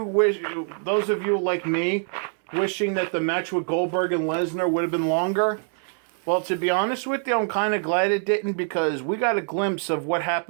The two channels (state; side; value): silent; left; 55 dB below the other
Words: like me, wishing that the match with Goldberg and Lesnar would have been longer, well, to be honest with you, I'm kind of glad it didn't, because we got a glimpse of what